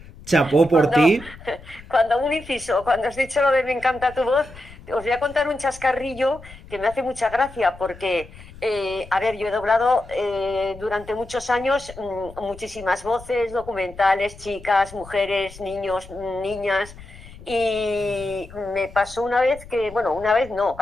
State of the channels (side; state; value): left; noise; rumble, 18 dB below the sound